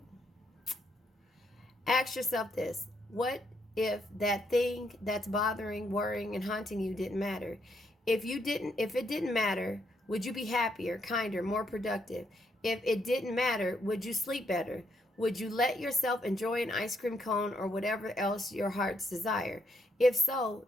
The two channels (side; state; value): both; normal; correlation 0.75